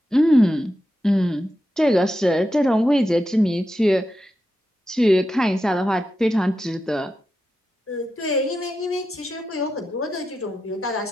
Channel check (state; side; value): normal; both; correlation 0.88